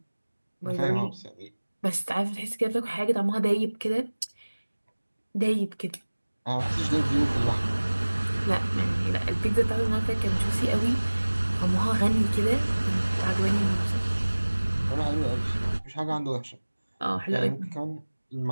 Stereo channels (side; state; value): both; inverted; correlation -1.00